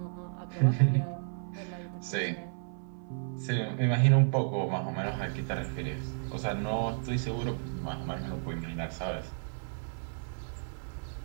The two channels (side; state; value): left; silent; 56 dB below the other